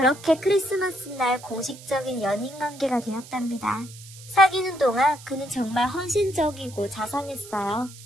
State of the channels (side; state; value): right; noise; hiss, 18 dB below the sound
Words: 크리스마스 날 공식적인 연인 관계가 되었답니다. 사귀는 동안 그는 정말 헌신적이고 자상했어요.